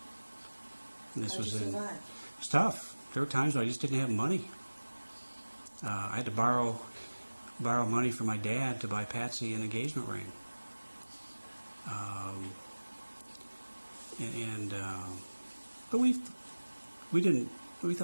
And this How'd was you survive? It was tough. There were times when I just didn't have money. I had to borrow money from my dad to buy Patsy an engagement ring. But we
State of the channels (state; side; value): inverted; both; correlation -1.00